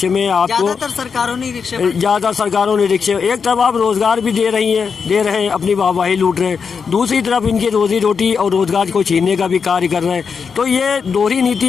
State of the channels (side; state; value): right; quieter; 5.9 dB